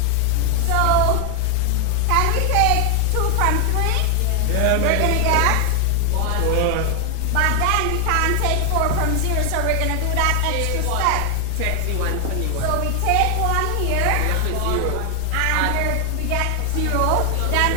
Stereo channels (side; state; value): both; different; correlation 0.00